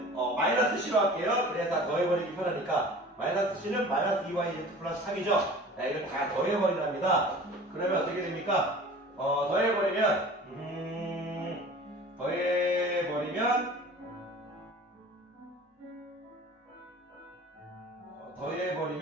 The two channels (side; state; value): both; normal; correlation 0.43